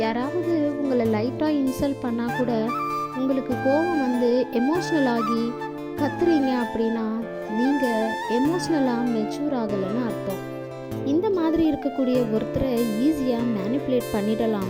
யாராவது உங்களை லைட்டாக இன்சல்ட் பண்ணால் கூட உங்களுக்கு கோபம் வந்து எமோஷ்னல் ஆகி கத்துறீங்க அப்படின்னா நீங்கள் எமோஷ்னலாக மெச்சூர் ஆகலைன்னு அர்த்தம். இந்த மாதிரி இருக்கக்கூடிய ஒருத்தரை ஈஸியாக மேனிப்புலேட்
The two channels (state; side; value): identical; both; correlation 1.00